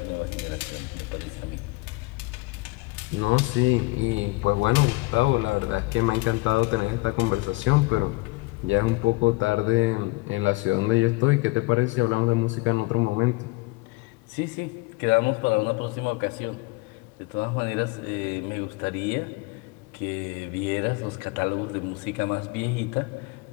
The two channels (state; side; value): quieter; right; 24.0 dB